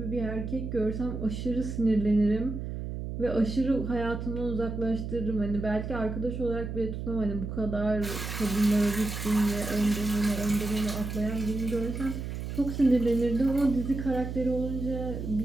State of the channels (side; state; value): right; noise; hum, 6 dB below the sound